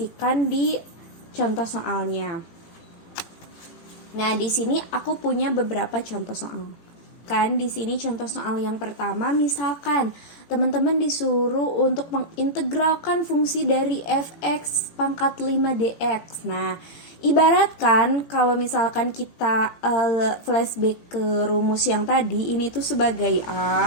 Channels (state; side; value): late; right; 18 ms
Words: di contoh soalnya. Nah, di sini aku punya beberapa contoh soal. Kan di sini contoh soal yang pertama, misalkan teman-teman disuruh untuk mengintegralkan fungsi dari fx pangkat 5 dx. Nah, ibaratkan kalau misalkan kita flashback ke rumus yang tadi, ini tuh sebagai